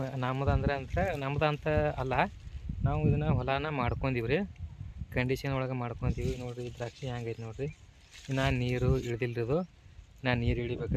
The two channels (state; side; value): identical; both; correlation 1.00